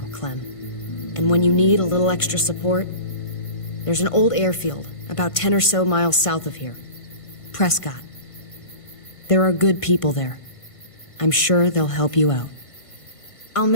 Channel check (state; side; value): late; right; 1.5 ms